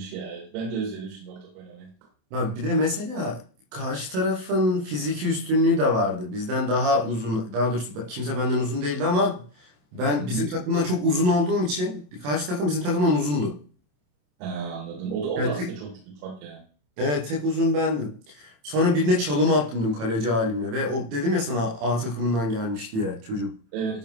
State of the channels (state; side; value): late; left; 27 ms